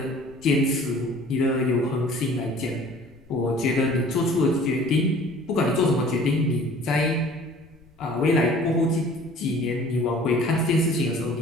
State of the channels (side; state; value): left; noise; rumble, 28 dB below the sound